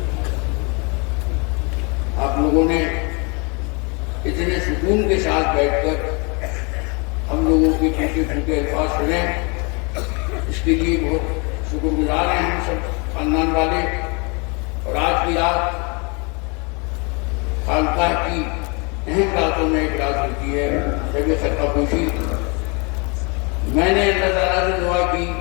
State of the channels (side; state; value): right; quieter; 31.6 dB